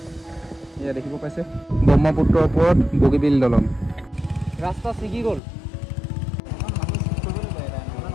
এয়া দেখিব পাইছে ব্ৰহ্মপুত্ৰৰ ওপৰত বগীবিল দলং ৰাস্তা ছিগি গ'ল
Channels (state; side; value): drops out; right; at 5.4 s